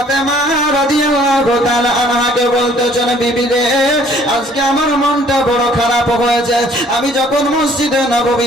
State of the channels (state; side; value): normal; both; correlation 0.58